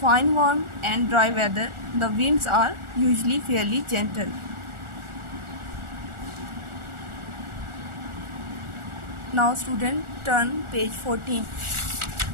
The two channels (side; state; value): left; late; 1.4 ms